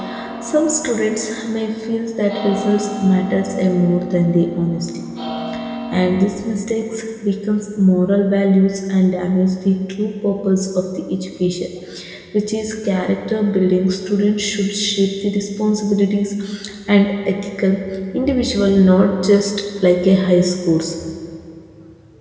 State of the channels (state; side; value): identical; both; correlation 1.00